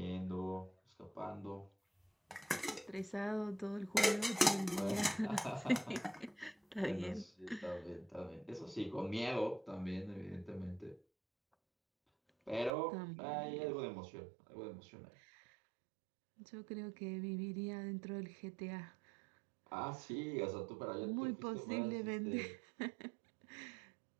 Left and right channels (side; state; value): left; drops out; at 12.7 s